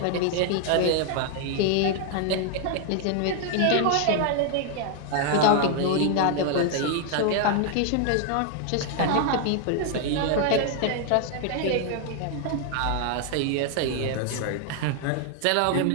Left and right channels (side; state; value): both; different; correlation 0.00